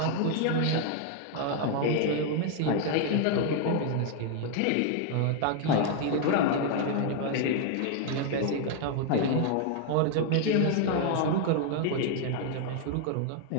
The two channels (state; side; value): different; both; correlation 0.00